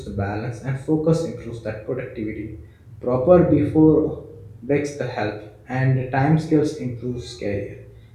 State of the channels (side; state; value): both; identical; correlation 1.00